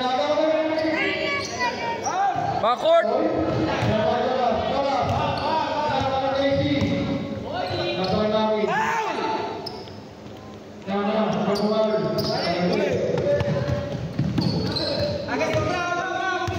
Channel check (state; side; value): identical; both; correlation 1.00